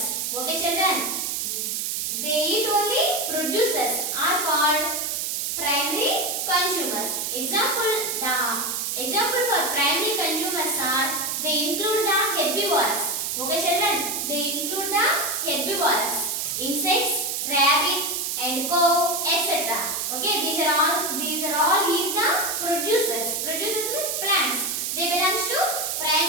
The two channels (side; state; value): right; noise; hiss, 1 dB below the sound